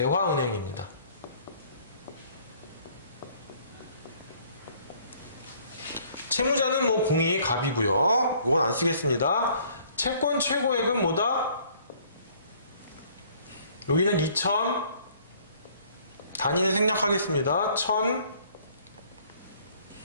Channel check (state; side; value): inverted; both; correlation -0.59